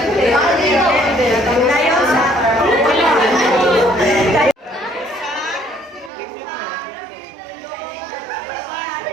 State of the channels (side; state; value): left; drops out; at 6.1 s